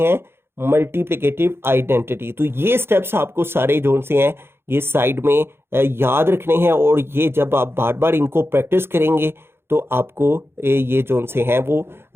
मल्टीप्लिकेटिव आइडेंटिटी। तो ये स्टेप्स आपको सारे जो से हैं ये साइड में याद रखने हैं, और ये जब आप बार बार इनको प्रैक्टिस करेंगे तो आपको ये जो से हैं वो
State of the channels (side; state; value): left; late; 0.11 ms